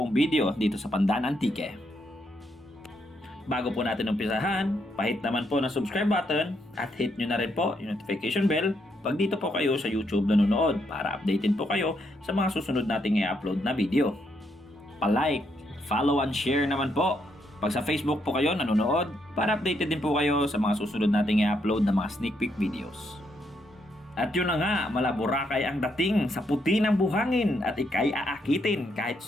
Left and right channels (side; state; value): both; normal; correlation 0.76